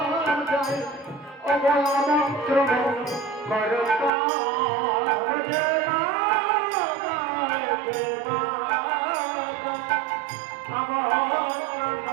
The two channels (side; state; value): left; drops out; at 4.1 s